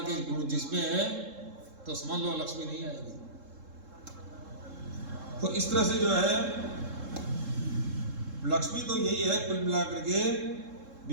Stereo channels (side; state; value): left; late; 3.7 ms